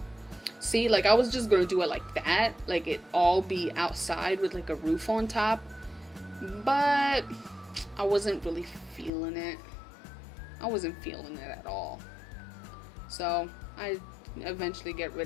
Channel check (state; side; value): drops out; right; at 9.1 s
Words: See, like I was just gonna do it like that, like it all be outside with like a roof on top, but I wasn't really feeling it. I wasn't feeling it at all. So I eventually get